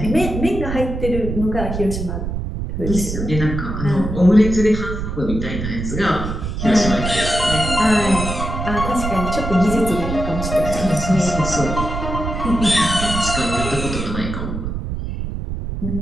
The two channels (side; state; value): right; noise; rumble, 5 dB below the sound